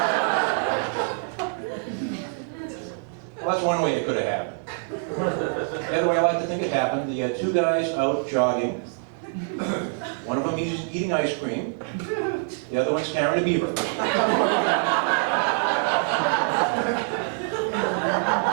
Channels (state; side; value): silent; left; 58 dB below the other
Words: Well, that's one way it could have happened. The other way I like to think it happened, you had two guys out jogging. One of them is eating ice cream. The other one's carrying a beaver.